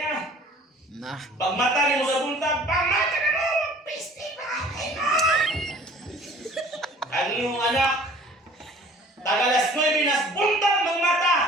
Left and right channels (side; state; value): both; normal; correlation 0.50